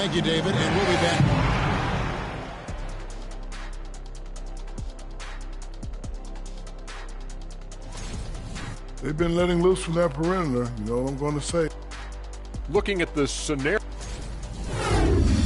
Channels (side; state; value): both; identical; correlation 1.00